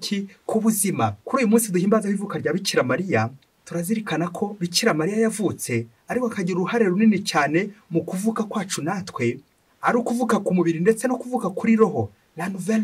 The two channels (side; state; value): both; identical; correlation 1.00